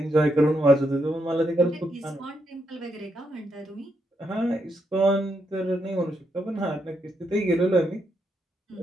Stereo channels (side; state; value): both; normal; correlation 0.80